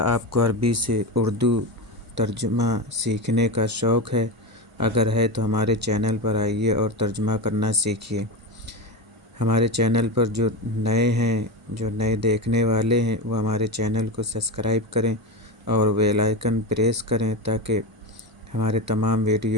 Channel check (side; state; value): both; normal; correlation 0.18